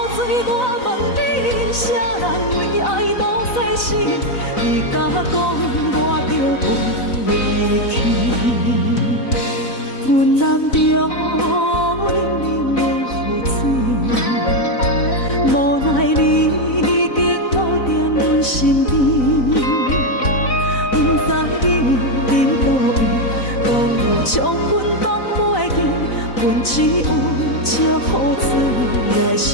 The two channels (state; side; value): late; right; 4.0 ms